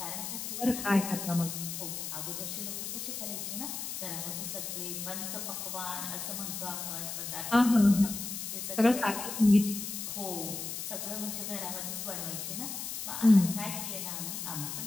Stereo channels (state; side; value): noise; left; hiss, 5 dB below the sound